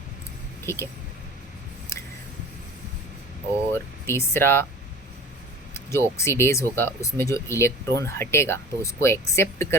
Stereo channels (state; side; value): normal; both; correlation 0.39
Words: ठीक है। और तीसरा जो ऑक्सीडेज होगा उसमें जो इलेक्ट्रॉन हटेगा तो उसको एक्सेप्ट